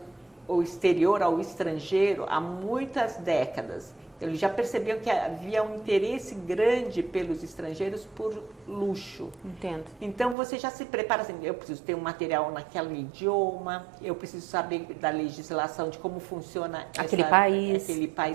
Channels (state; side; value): drops out; left; at 10.4 s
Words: exterior, ao estrangeiro, há muitas décadas. Eles já percebiam que havia um interesse grande pelos estrangeiros por luxo. Entendo. Então, você já se prepara assim, eu preciso ter um material naquele idioma, eu preciso saber da legislação, de como funciona aquele